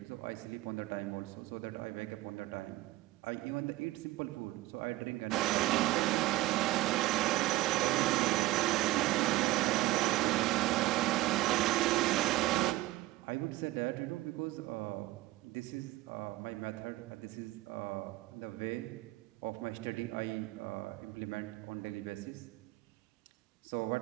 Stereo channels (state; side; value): quieter; left; 17.8 dB